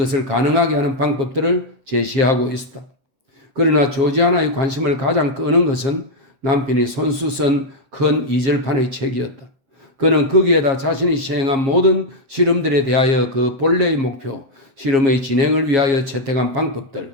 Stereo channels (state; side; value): late; left; 7.4 ms